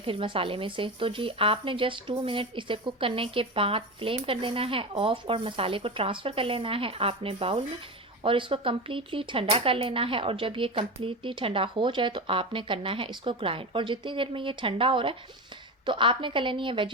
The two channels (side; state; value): both; normal; correlation 0.22